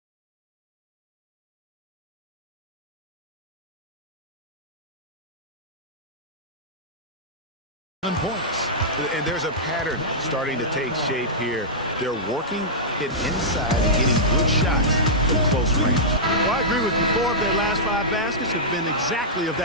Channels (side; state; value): both; normal; correlation -0.12